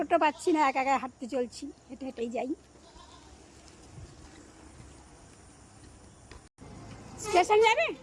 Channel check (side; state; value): both; identical; correlation 1.00